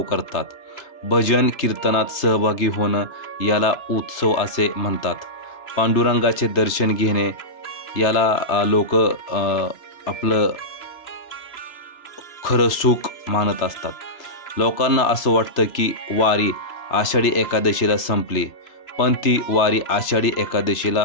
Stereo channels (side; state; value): right; late; 3.3 ms